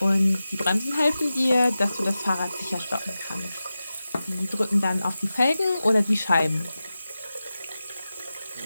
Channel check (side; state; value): both; inverted; correlation -0.94